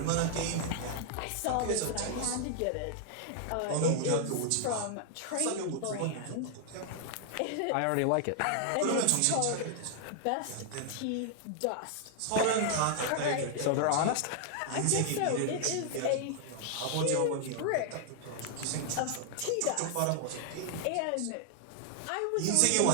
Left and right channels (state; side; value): different; both; correlation 0.00